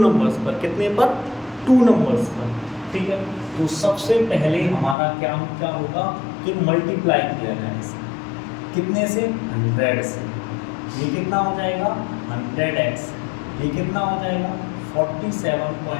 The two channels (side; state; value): right; drops out; at 5.0 s